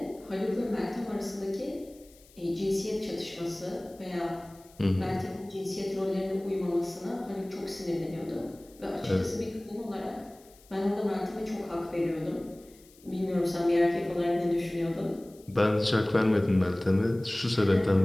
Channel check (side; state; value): left; noise; hiss, 26 dB below the sound